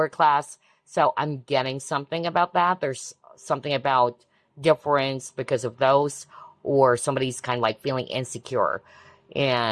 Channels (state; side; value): identical; both; correlation 1.00